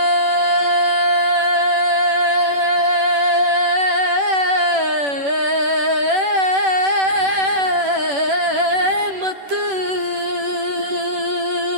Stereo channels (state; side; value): late; left; 10 ms